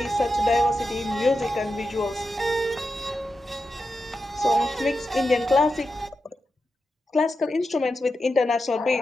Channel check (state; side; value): normal; both; correlation 0.89